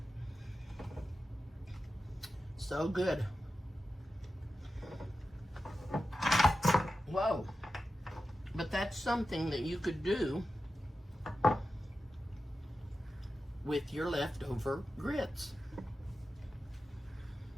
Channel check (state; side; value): normal; both; correlation 0.92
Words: So good. Whoa. But that's something that you could do with your leftover grits.